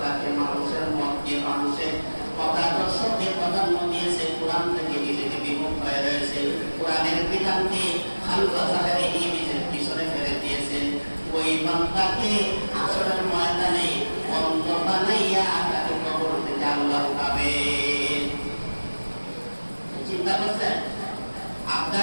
মানুষের মতকে, মানুষের মতাদর্শকে প্রাধান্য দিয়েছে, কোরআন থেকে নিজেকে বিমুখ হয়ে রয়েছে, কোরআনের বিধানকে খালফা জাহেরে নিজের পিছনে ফেলে দিয়েছে, ওই বান্দাকে আসরের ময়দানে অন্ধ বানাইয়া তাকে কবর থেকে আল্লাহ উঠাবে। চিন্তা করছেন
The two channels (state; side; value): inverted; both; correlation -1.00